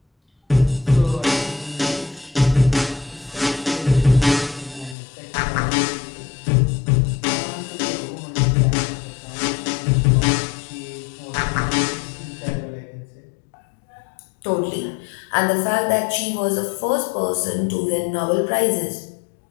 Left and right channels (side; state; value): right; drops out; at 5.0 s